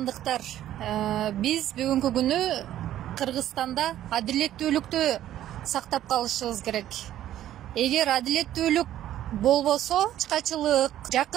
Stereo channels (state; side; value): quieter; left; 12.4 dB